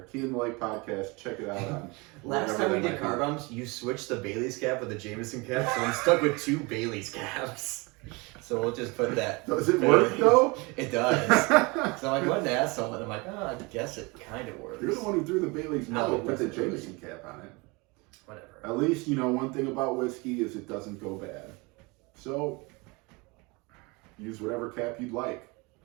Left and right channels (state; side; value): quieter; left; 26.8 dB